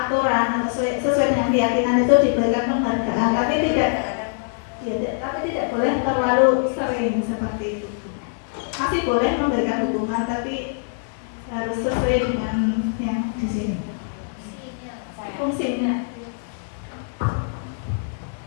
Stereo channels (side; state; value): right; silent; digital silence